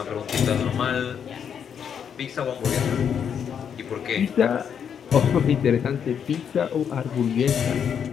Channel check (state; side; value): quieter; right; 7.8 dB